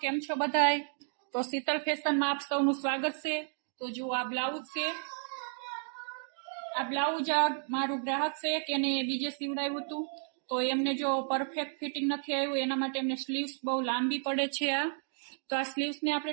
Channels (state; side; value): silent; left; 55 dB below the other